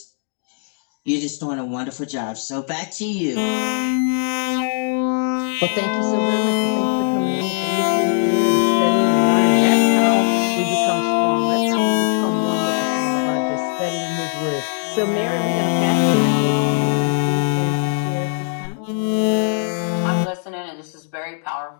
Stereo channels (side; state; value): right; silent; 55 dB below the other